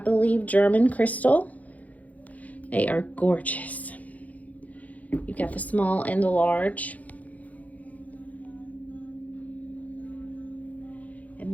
German crystal. They are gorgeous. You've got the small and the large.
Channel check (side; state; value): right; late; 0.074 ms